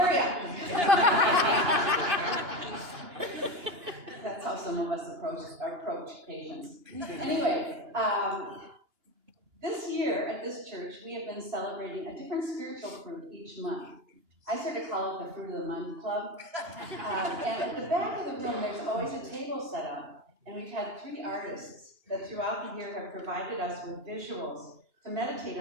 up. That's how some of us approach patience. Anyway, this year at this church, we have been celebrating a different spiritual fruit each month. I sort of call it the Fruit of the Month Club. And at the back of the room, there's always a table set up. And we've had 3 artists that throughout the year have provided us with visuals to meditate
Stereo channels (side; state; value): left; late; 2.9 ms